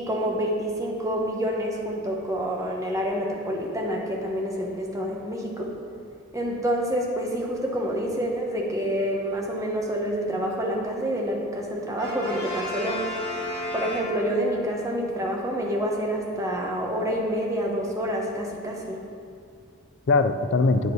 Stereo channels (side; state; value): both; normal; correlation 0.37